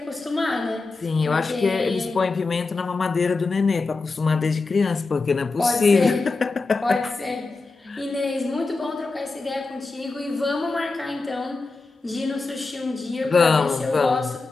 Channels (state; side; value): quieter; right; 3.8 dB